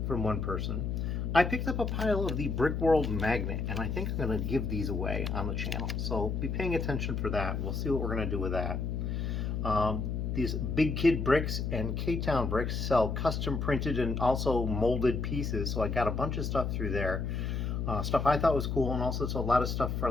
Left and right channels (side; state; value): left; noise; hum, 1 dB below the sound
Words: From one person. I picked up a pile of the Brickworld magnet, and I think I'm going to give these away on the channel. So be paying attention for that. We'll see what we're going to do with that. These Big Kid Bricks and K-Town Bricks sell custom printed and also molded pieces. So I got a bunch of stuff through there. Stuff I thought was cool, and also it's a lot of stuff for